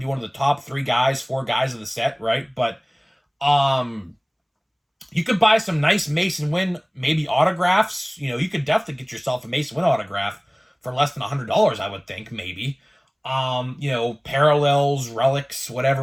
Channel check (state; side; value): identical; both; correlation 1.00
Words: be one of the top 4 guys of the set, right? But you could buy some nice Mason Wynn, maybe autographs. You could definitely get yourself a Mason Wynn autograph for less than $100, I would think, maybe. Parallels, relics,